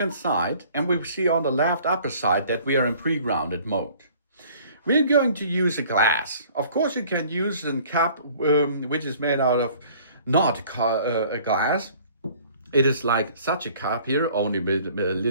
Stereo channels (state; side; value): inverted; both; correlation -0.53